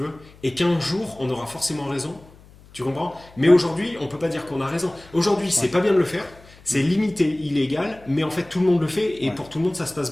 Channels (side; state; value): left; noise; hum, 24 dB below the sound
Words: et qu'un jour, on aura forcément raison. Tu comprends? Mais aujourd'hui, on peut pas dire qu'on a raison. Aujourd'hui, c'est pas bien de le faire. C'est limité, illégal, mais en fait, tout le monde le fait, et pour tout le monde, ça se passe